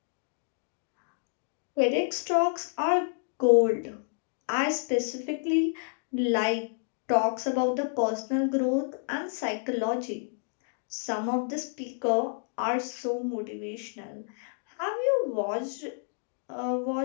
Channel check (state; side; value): silent; right; digital silence